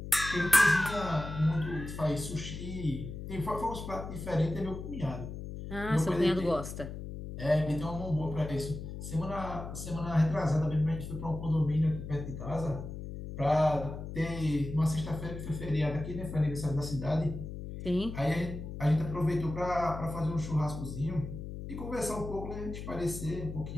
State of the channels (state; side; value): noise; left; hum, 8 dB below the sound